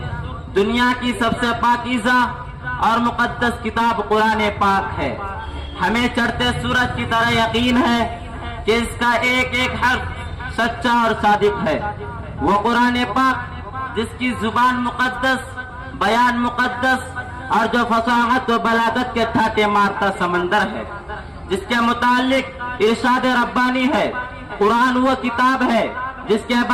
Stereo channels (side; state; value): both; identical; correlation 1.00